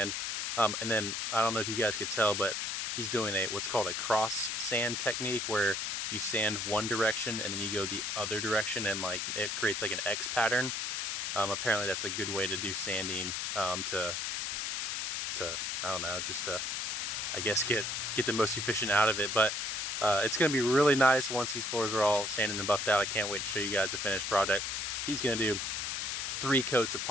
And then I don't know if you guys could tell, but he's doing what's called a cross sand technique, where you sand one direction and then you go the other direction, and like it creates like an X pattern. Apparently that's a good way to do sanding, to I don't know, just to, I guess, get the most efficient out of it. But it's going to be really nice once these floors are all sanded and buffed out. I can't wait to show you guys the finished product. He's going to do 3 coats of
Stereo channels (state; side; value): noise; left; hiss, 1 dB below the sound